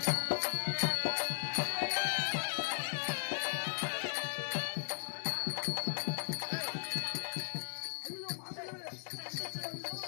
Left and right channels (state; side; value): silent; right; digital silence